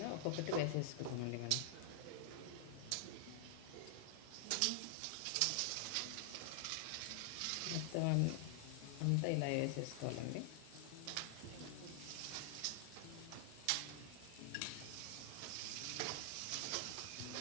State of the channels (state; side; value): different; both; correlation 0.00